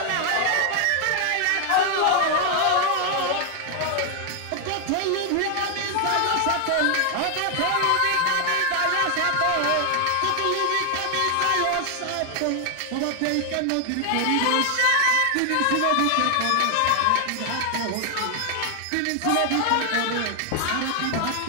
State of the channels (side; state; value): both; different; correlation 0.00